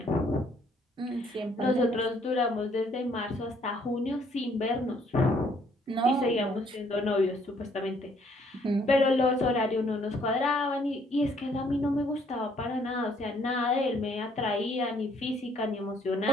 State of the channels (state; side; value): normal; both; correlation 0.65